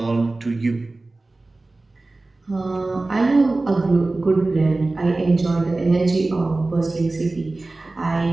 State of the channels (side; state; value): left; quieter; 3.1 dB